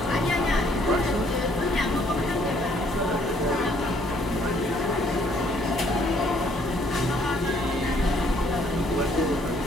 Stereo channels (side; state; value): both; normal; correlation 0.65